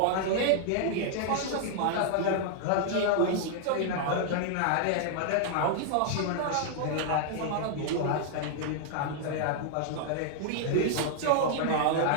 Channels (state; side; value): different; both; correlation -0.01